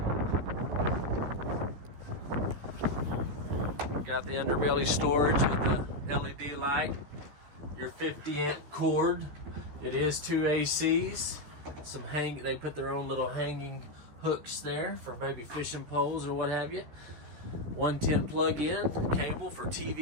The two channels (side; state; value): left; late; 14 ms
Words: Got the underbelly storage with the LED light. Your 50-amp cord. It is two ACs. They put their own little hanging hooks there for maybe fishing poles or what have you. 110 plug-in cable for